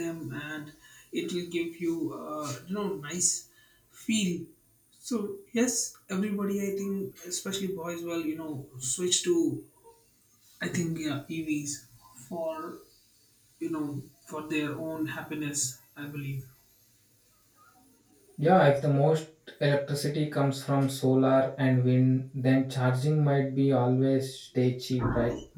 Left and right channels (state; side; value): identical; both; correlation 1.00